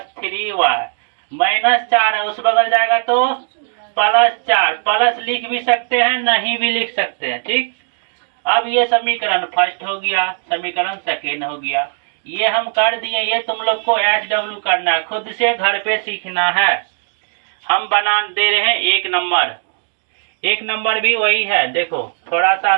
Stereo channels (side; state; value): left; silent; digital silence